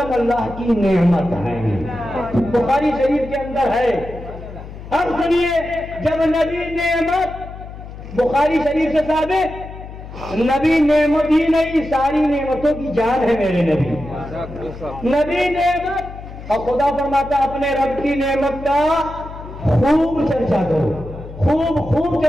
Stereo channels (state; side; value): noise; left; hum, 13 dB below the sound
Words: اللہ کی نعمت ہے، بخاری شریف کے اندر ہے۔ اب سنیے، جب نبی نعمت بخاری شریف سے ثابت، نبی نعمت ہی نہیں ساری نعمتوں کی جان ہے میرے نبی، نبی نعمت، اور خدا فرماتا اپنے رب کی نعمت کا خوب چرچا کرو، خوب